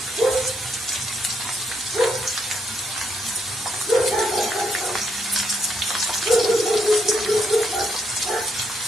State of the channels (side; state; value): both; normal; correlation 0.75